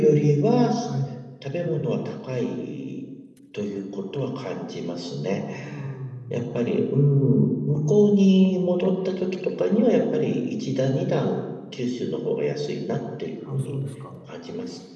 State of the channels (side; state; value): both; identical; correlation 1.00